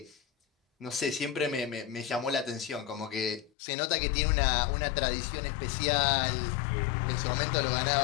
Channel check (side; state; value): right; drops out; at 3.5 s